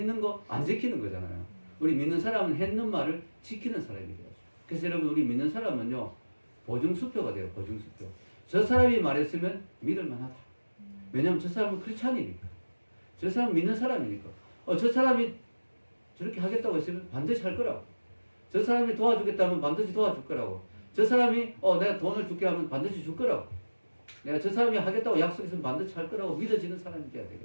거 안 지키는 거잖아요. 우리 믿는 사람은 했는 말을 지키는 사람이 돼요. 그래서 여러분, 우리 믿는 사람은요, 보증수표가 돼요. 보증수표. 저 사람이 말했으면 믿을 만하다. 왜냐하면 저 사람은 크리스찬이니까. 저 사람은 믿는 사람이니까. 저 사람이 저렇게 하겠다고 했으면 반드시 할 거라고. 저 사람이 도와주겠다면 반드시 도와줄 거라고. 저 사람이 내가 돈을 줄게 하면 반드시 줄 거라고. 내가 저 사람이 하겠다고 약속했으면 반드시 할 거라고 믿어지는 사람이 돼야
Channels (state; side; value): inverted; both; correlation -1.00